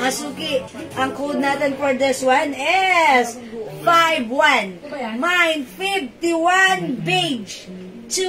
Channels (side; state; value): both; identical; correlation 1.00